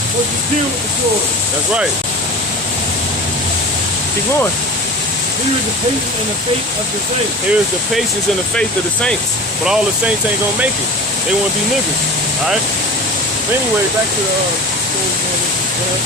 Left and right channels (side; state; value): both; normal; correlation 0.34